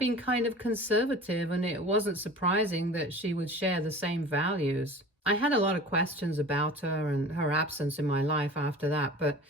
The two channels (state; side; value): normal; both; correlation 0.39